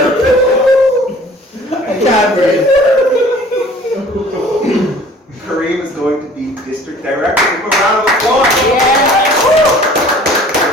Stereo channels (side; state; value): both; normal; correlation 0.50